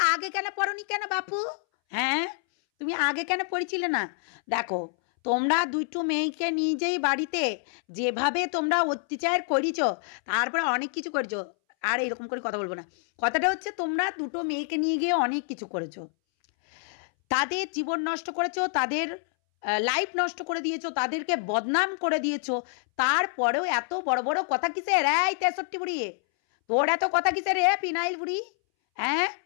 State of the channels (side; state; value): right; silent; 60 dB below the other